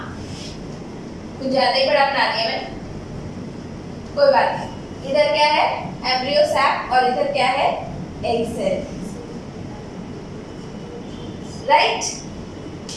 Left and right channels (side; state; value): both; identical; correlation 1.00